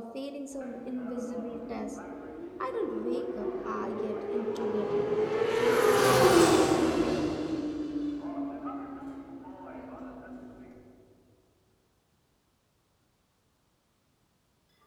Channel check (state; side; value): identical; both; correlation 1.00